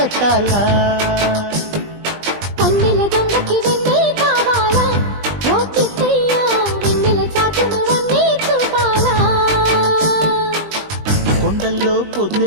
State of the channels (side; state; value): left; late; 20 ms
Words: కన్నెల దొంగకి వెన్నే కావాలా ఓ కిట్టయ్య వెన్నెల చాటును వన్నే చూపాలా కొండల్లో